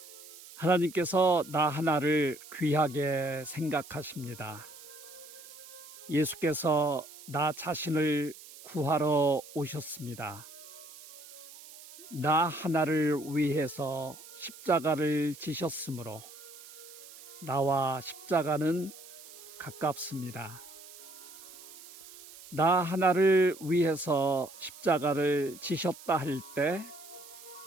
하나님께서 나 하나를 귀하게 생각하십니다. 예수께서 나 자신을 구하러 오셨습니다. 나 하나를 위해서 십자가를 지셨으므로 나와 십자가는 가깝습니다. 나 하나를 위해서 십자가를 지셨다 할 때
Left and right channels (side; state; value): right; noise; hiss, 17 dB below the sound